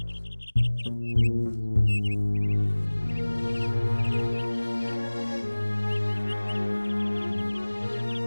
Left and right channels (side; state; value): both; inverted; correlation -1.00